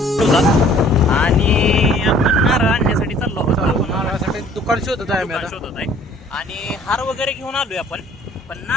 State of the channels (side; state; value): both; normal; correlation 0.55